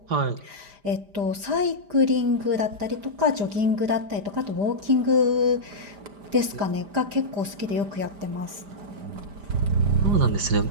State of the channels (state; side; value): late; left; 5.0 ms